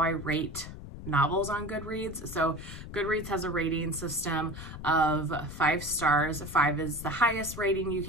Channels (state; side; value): noise; left; rumble, 11 dB below the sound